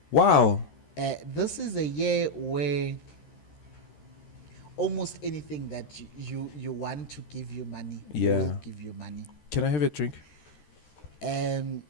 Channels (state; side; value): late; right; 13 ms